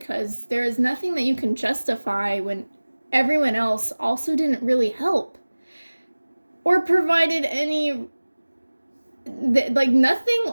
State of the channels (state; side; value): inverted; both; correlation -1.00